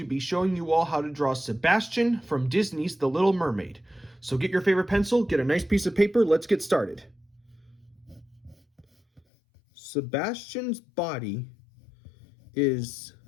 be showing you all how to draw Sebastian from Disney's The Little Mermaid. So get your favorite pencil, get a nice piece of paper, let's get started. Sebastian's body is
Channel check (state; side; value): drops out; right; at 9.2 s